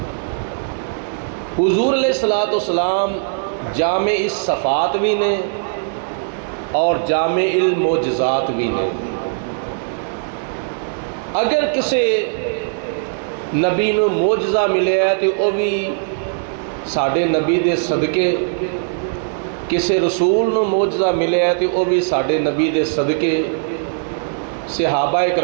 حضور علیہ الصلوۃ والسلام جامع الصفات بھی نے اور جامع المعجزات بھی نے۔ اگر کسی نبی نو معجزہ ملے ہے تو وہ بھی ساڈے نبی دے صدقے، کسی رسول نو معجزہ ملے ہے تو وہ بھی ساڈے نبی دے صدقے، صحابہ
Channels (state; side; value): silent; left; 66 dB below the other